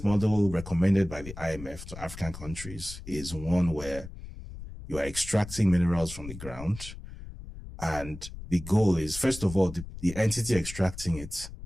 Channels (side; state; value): left; noise; rumble, 12 dB below the sound